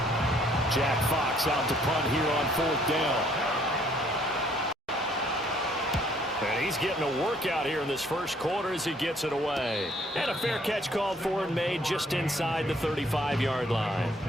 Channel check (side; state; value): both; normal; correlation 0.63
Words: Jack Fox out to punt here on 4th down. And he's getting a workout here in this first quarter as he gets it away. And a fair catch called for and made just inside the 35-yard line.